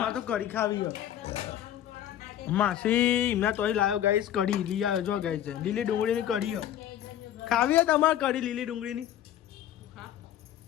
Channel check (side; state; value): right; quieter; 11.2 dB